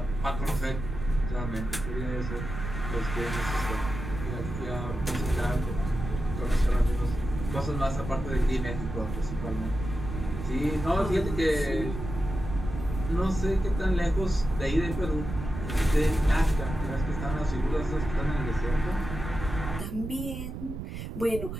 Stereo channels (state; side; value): noise; right; rumble, 7 dB below the sound